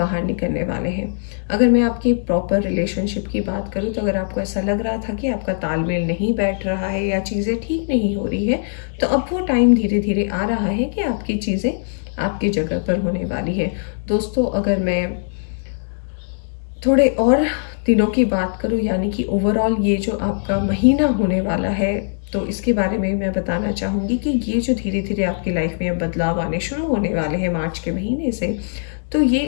निकलने वाले हैं। अगर मैं आपकी प्रॉपर रिलेशनशिप की बात करूं, तो अगर आपको ऐसा लग रहा था कि आपका तालमेल नहीं बैठ रहा है या चीज़ें ठीक नहीं हो रही है, तो अब वो टाइम धीरे धीरे आ रहा है कि आपकी चीज़ें आपकी जगह पर होने वाली है। दोस्तों अगर मैं थोड़े और दिनों की बात करूं, यानी कि ओवरऑल ये जो आपका महीना होने वाला है, तो इसके बारे में मैं बताना चाहूँगी कि ये जो धीरे धीरे आपकी लाइफ में बदलाव आने शुरू होने वाले हैं मार्च के महीने से, तो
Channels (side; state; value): right; silent; digital silence